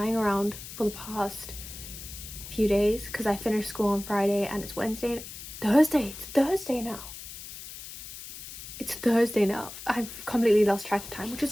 around for the past few days because I finished school on Friday and it's Thursday now. It's Thursday now. I've completely lost track of time, which is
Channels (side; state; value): left; noise; hiss, 12 dB below the sound